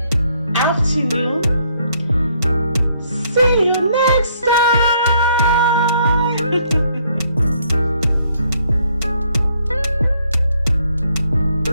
afternoon. See you next time.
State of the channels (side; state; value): both; inverted; correlation -0.69